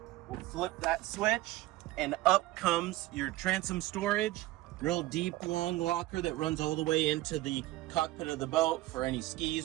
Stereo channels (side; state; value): left; quieter; 17.7 dB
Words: we'll flip that switch and up comes your transom storage. Real deep, long locker that runs all the way into the cockpit of the boat for any skis,